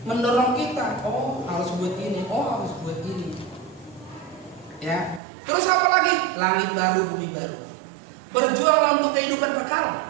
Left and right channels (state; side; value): drops out; left; at 5.2 s